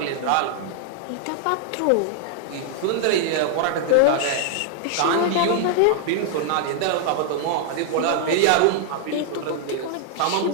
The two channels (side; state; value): both; different; correlation 0.00